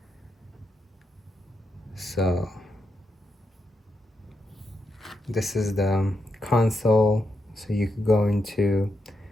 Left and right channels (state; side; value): normal; both; correlation 0.84